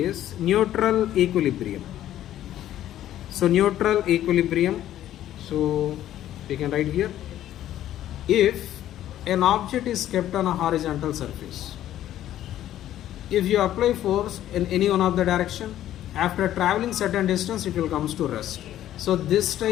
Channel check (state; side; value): quieter; right; 12.4 dB